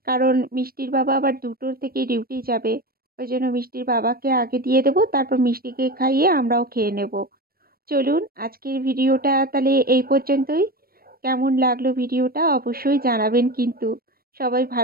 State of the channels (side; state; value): left; late; 0.44 ms